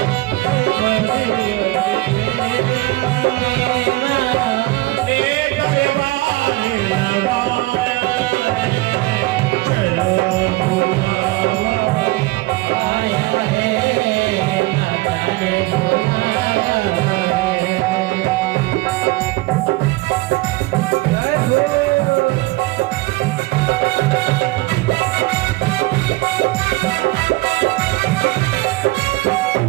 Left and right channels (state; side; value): quieter; left; 20.9 dB